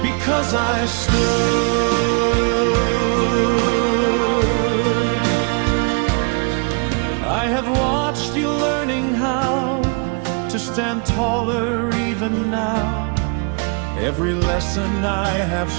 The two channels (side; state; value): left; quieter; 36.6 dB